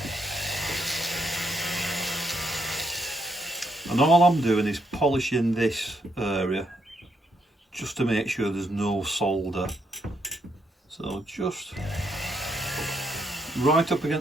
And all I'm doing is polishing this area just to make sure there's no solder. So just right up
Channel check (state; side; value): normal; both; correlation 0.76